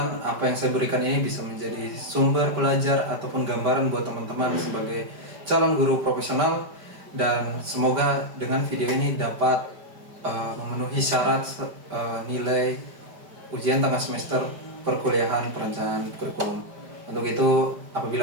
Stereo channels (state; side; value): late; left; 5.1 ms